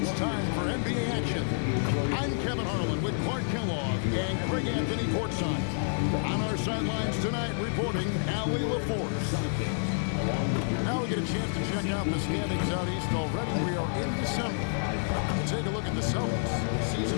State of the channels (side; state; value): right; silent; digital silence